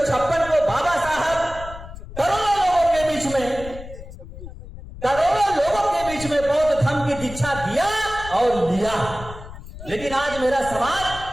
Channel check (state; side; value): noise; left; rumble, 13 dB below the sound